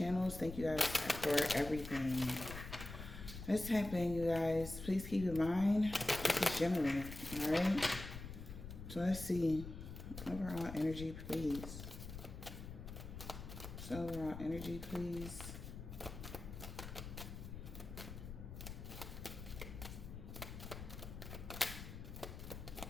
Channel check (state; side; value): noise; left; rumble, 10 dB below the sound